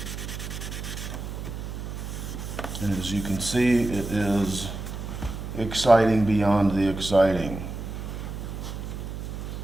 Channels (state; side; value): noise; right; hum, 7 dB below the sound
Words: And as you can see, it is exciting beyond the exciting.